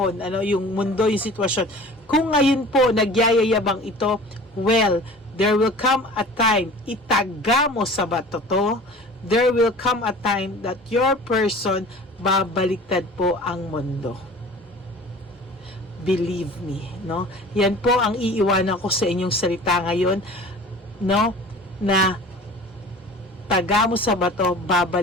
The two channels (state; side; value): normal; both; correlation 0.43